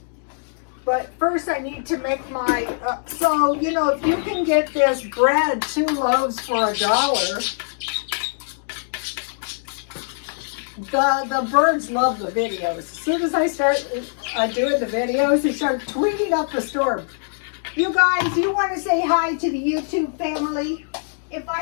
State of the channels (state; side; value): silent; right; digital silence